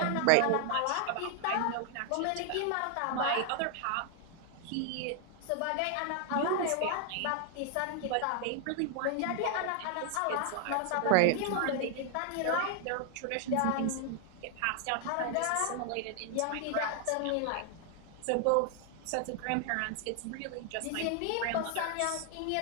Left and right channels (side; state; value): both; different; correlation 0.00